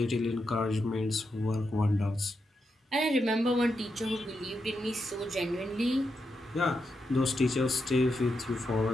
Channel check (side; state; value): both; normal; correlation 0.85